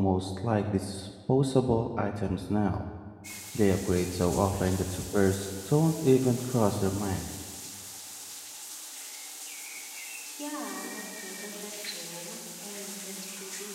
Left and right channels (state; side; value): identical; both; correlation 1.00